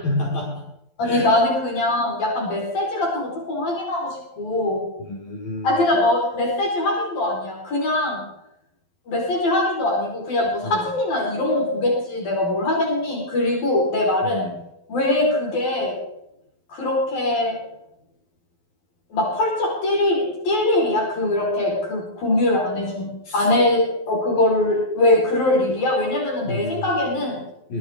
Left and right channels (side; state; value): right; late; 12 ms